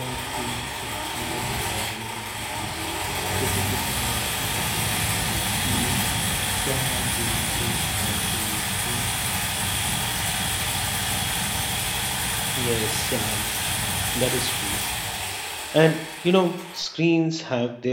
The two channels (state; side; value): identical; both; correlation 1.00